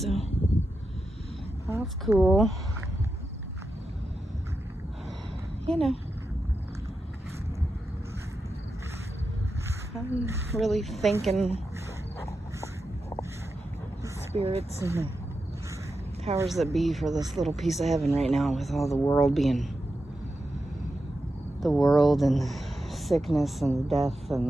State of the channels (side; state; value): both; normal; correlation 0.89